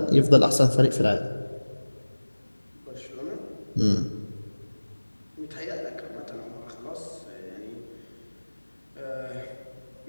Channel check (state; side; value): inverted; both; correlation -1.00